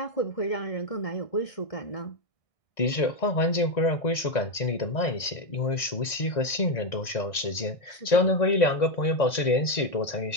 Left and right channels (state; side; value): late; right; 1.6 ms